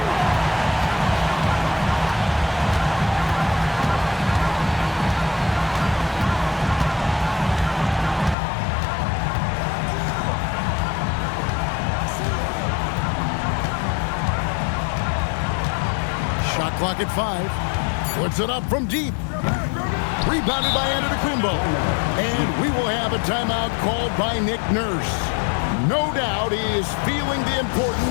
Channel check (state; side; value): drops out; right; at 8.3 s